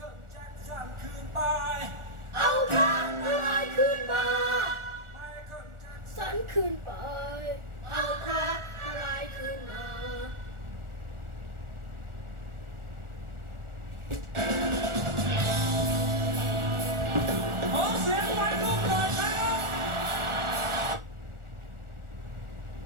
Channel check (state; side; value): late; left; 1.4 ms